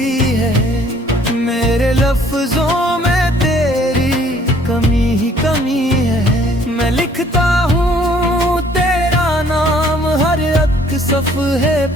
है, मेरे लफ्जों में तेरी कमी ही कमी है। मैं लिखता हूँ तेरा नाम हर एक सफ़हे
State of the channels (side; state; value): both; normal; correlation 0.59